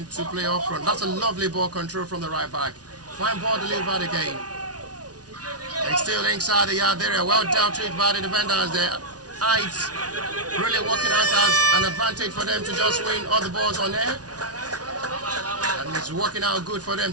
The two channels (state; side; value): late; left; 0.68 ms